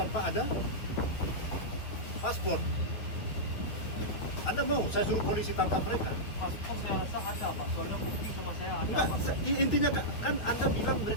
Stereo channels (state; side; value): late; right; 9.3 ms